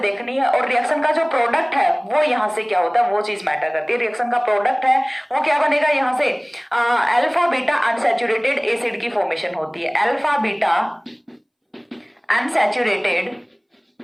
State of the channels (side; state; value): both; identical; correlation 1.00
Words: देखनी है। और रिएक्शन का जो प्रोडक्ट है वो यहाँ से क्या होता है वो चीज मैटर करती है। रिएक्शन का प्रोडक्ट है वो क्या बनेगा, यहाँ से अल्फा बीटा अनसैचुरेटेड एसिड की फॉर्मेशन होती है। Alpha beta unsaturated